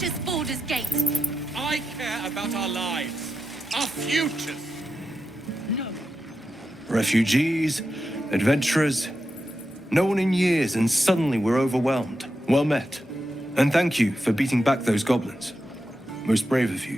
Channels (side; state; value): both; normal; correlation 0.88